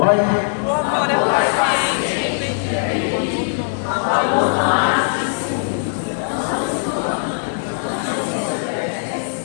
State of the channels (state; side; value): silent; right; 60 dB below the other